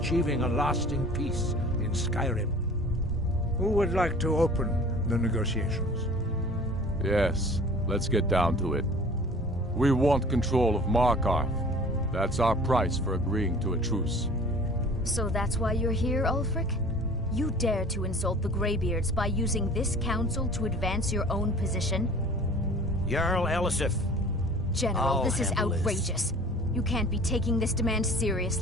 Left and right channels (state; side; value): normal; both; correlation 0.46